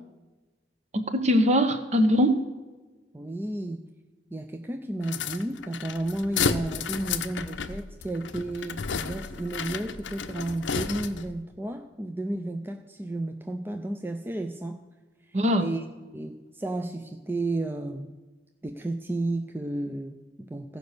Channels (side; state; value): both; normal; correlation 0.62